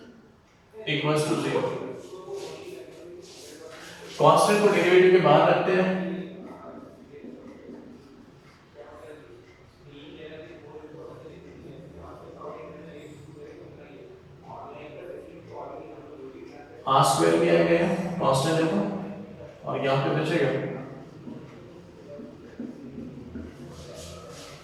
इक्वल्स टू 0। कांस्टेंट को डेरिवेटिव के बाहर रखते हैं, r स्क्वायर किया गया कांस्टेंट देखो, और यहाँ पे बचेगा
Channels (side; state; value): both; identical; correlation 1.00